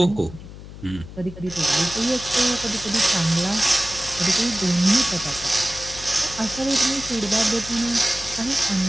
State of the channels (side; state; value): left; noise; hum, 14 dB below the sound